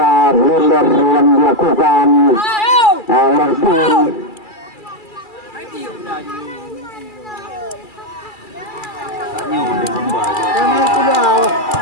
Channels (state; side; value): late; right; 2.3 ms